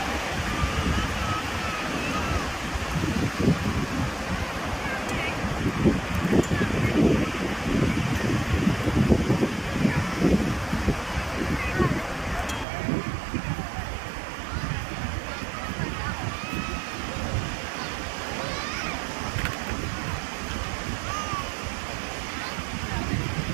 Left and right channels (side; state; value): left; drops out; at 12.7 s